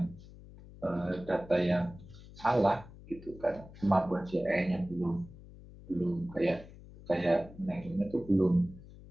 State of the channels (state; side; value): noise; left; hum, 18 dB below the sound